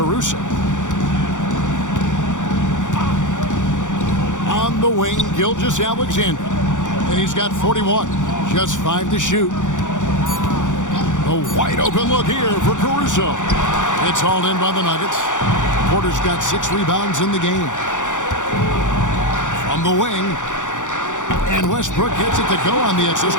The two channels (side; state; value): right; late; 0.86 ms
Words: On the wing, Gilgeous-Alexander. And he's got 41. Just 5 to shoot. A wide open look here for Caruso. It's hauled in by the Nuggets. Porter's got 6 rebounds in the game. From the wing. And Westbrook gets it to go on the assist